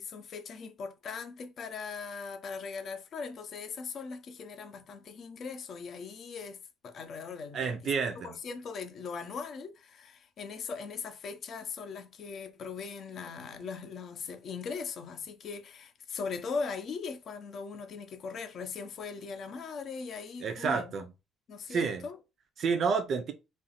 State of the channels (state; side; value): normal; both; correlation 0.67